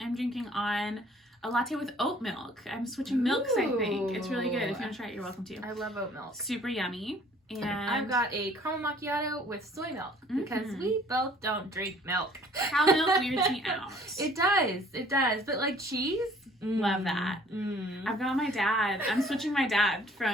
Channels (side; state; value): both; normal; correlation 0.56